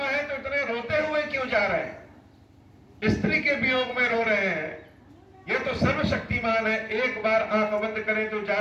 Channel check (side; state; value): both; identical; correlation 1.00